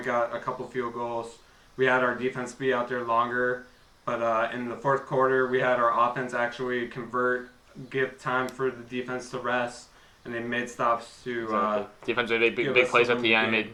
got a couple field goals. We had our defense be out there longer. But in the fourth quarter, we had our offense actually give time for the defense to rest, and they made stops to. Defense made big plays at the end, made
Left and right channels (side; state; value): both; identical; correlation 1.00